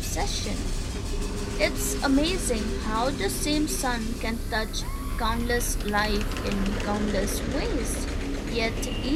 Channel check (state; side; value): identical; both; correlation 1.00